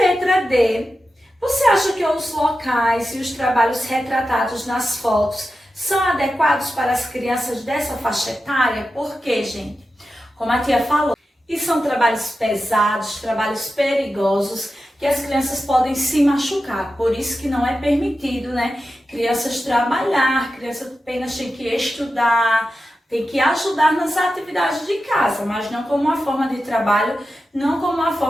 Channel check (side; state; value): both; normal; correlation 0.91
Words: letra D, Você acha que os locais e os trabalhos retratados nas fotos são adequados para as crianças dessa faixa etária? Por quê, gente? Como a tia falou, e são trabalhos pesados, trabalhos perigosos, que as crianças podem se machucar. Por isso que não é permitido, né? Crianças trabalhar, criança apenas tem que estudar, tem que ajudar nas atividades de casa, mas não como uma forma de trabalho, não como uma